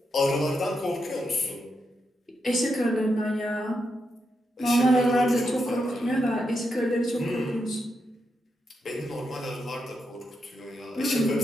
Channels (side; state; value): both; normal; correlation 0.84